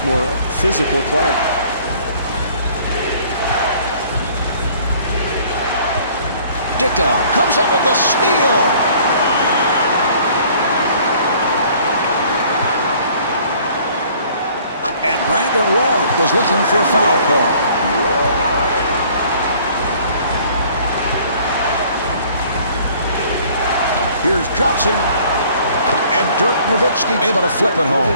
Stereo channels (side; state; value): both; inverted; correlation -0.55